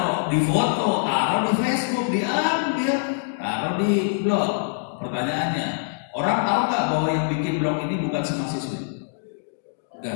di foto, taruh di Facebook, diambil, taruh di blog. Pertanyaannya, orang tahu nggak bahwa yang bikin blog ini bukan si mahasiswi?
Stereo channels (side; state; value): right; silent; digital silence